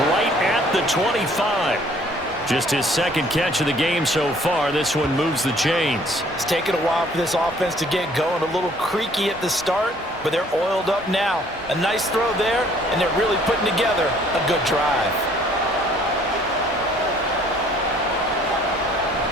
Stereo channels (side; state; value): both; normal; correlation 0.58